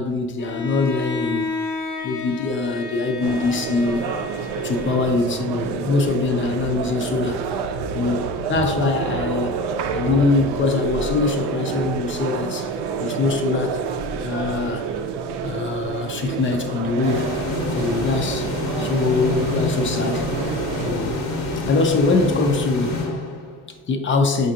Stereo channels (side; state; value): both; normal; correlation 0.36